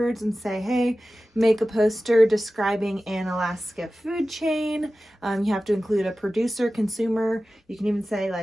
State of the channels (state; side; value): normal; both; correlation 0.95